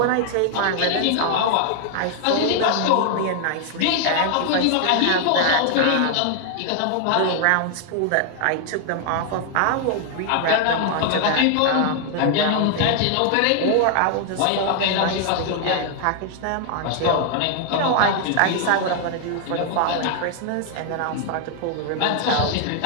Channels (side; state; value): both; different; correlation 0.00